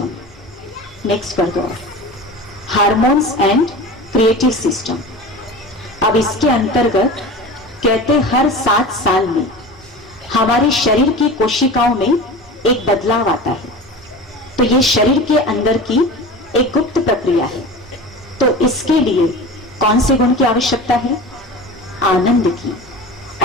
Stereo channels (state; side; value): normal; both; correlation 0.33